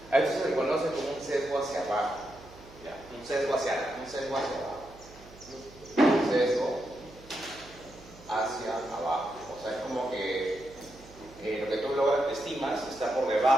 A esto se le conoce como un sesgo hacia abajo. ¿Ya? Un sesgo hacia abajo. Un sesgo hacia abajo. O sea, es como que lo que tú estimas está por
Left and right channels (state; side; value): noise; right; hum, 21 dB below the sound